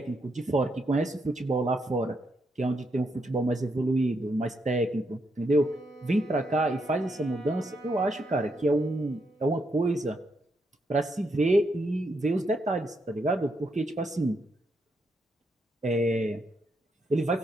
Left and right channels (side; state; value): both; normal; correlation 0.79